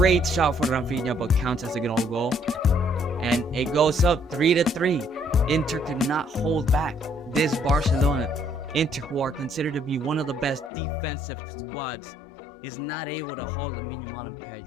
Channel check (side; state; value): right; drops out; at 10.7 s